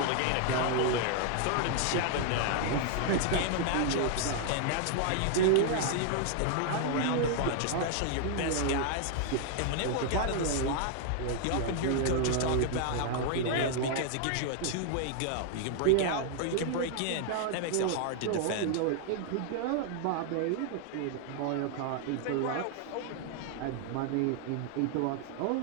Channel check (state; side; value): different; both; correlation 0.00